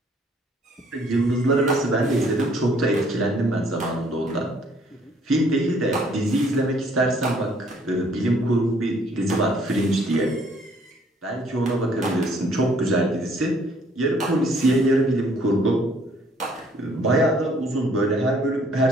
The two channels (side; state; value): both; normal; correlation 0.62